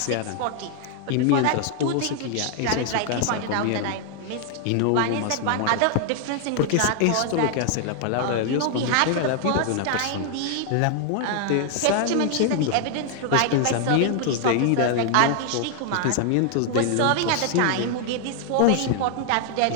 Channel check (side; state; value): both; different; correlation 0.00